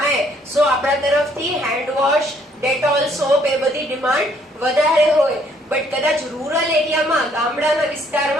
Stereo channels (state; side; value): normal; both; correlation 0.65